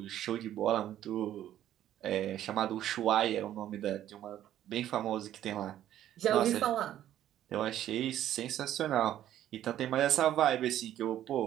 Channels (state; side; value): quieter; left; 12.0 dB